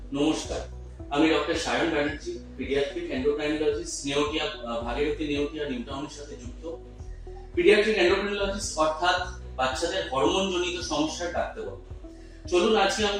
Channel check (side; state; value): both; identical; correlation 1.00